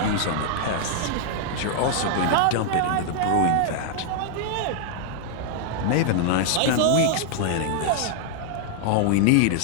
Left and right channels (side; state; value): both; different; correlation 0.00